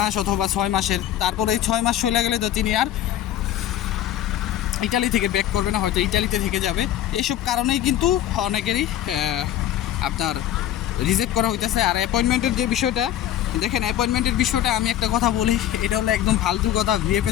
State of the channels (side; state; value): right; quieter; 11.8 dB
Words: অথবা 6 মাসের। তারপরে এই 6 মাস চলে গেলে তো তিনি আর ইটালি থেকে ব্যাক করবে না, হয়তো ইটালিতে থেকে যাবে। এইসব কারণেই কিন্তু অনেকেরই আপনার রিজেক্ট করা হইতেছে। আর অ্যাপয়েন্টমেন্টের যে বিষয়টা দেখেন, অ্যাপয়েন্টমেন্টের বিষয়টা আমি একটা কথা বলি, এটা হলো একদম ফালতু কথা।